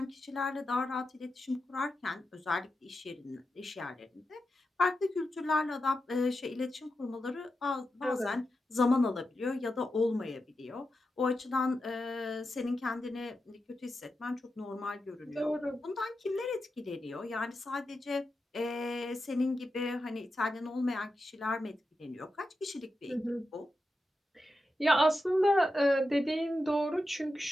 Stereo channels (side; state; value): both; normal; correlation 0.89